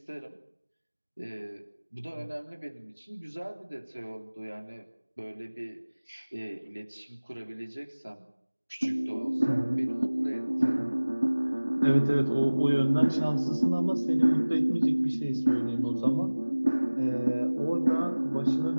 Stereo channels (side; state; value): both; inverted; correlation -1.00